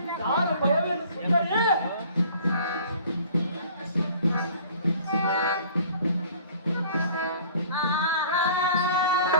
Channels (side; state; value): both; inverted; correlation -0.50